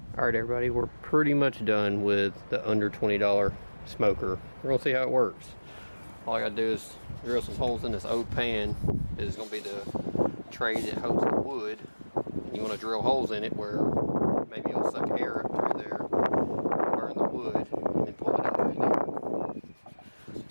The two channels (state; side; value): inverted; both; correlation -1.00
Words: Alright everybody, we're pretty much done with the under $20 smoker. We're gonna see how it works. All I gotta do is drill some holes in this oak pan. This is gonna be the tray that holds the wood. You wanna drill holes in it where maybe it'll suck air up through there, burn the wood, and then pull it out through there.